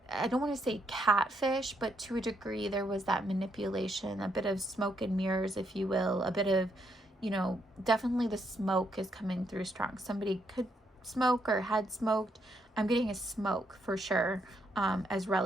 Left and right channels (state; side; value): normal; both; correlation 0.76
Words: I don't want to say catfish, but to a degree there was that manipulation, a bit of smoke and mirrors, if you will, a bit of, definitely the smoke is coming through strong. Somebody could smoke or had smoked. I'm getting a smoke for sure, as